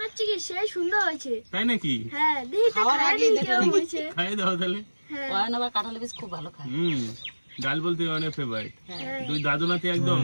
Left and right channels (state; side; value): inverted; both; correlation -1.00